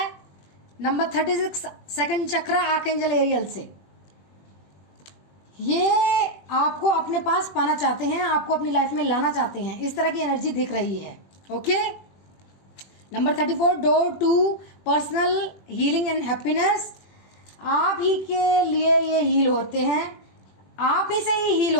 Number 36 second chakra, archangel aerial से ये आपको अपने पास पाना चाहते हैं, आपको अपनी लाइफ में लाना चाहते हैं, इस तरह की एनर्जी दिख रही है। Okay, number 34 door to personal healing and happiness. आप ही के लिए ये हील होते हैं, आप ही से ही हील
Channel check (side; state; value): right; late; 20 ms